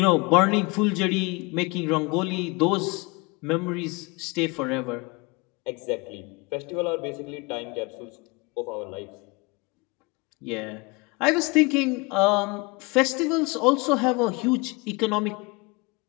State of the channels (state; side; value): quieter; right; 27.3 dB